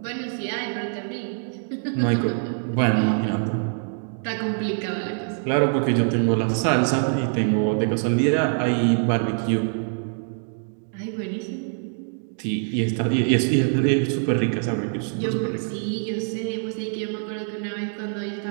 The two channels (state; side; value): silent; left; 61 dB below the other